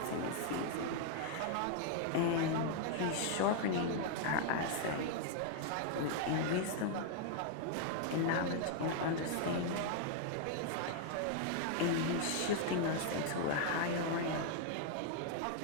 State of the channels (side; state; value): both; different; correlation 0.00